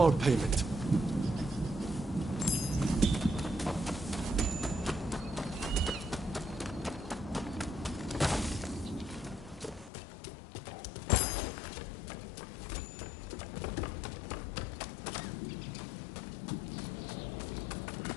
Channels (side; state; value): right; drops out; at 9.9 s